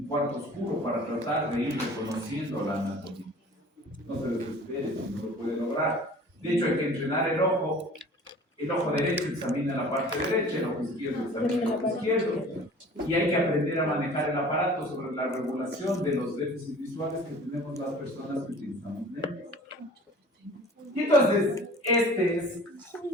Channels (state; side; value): normal; both; correlation 0.45